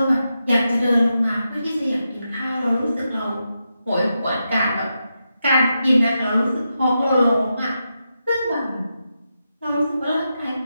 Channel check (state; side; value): inverted; both; correlation -0.87